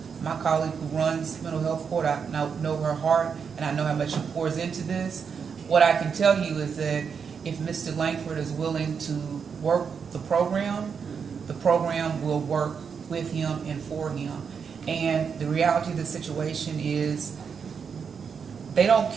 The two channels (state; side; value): quieter; left; 6.4 dB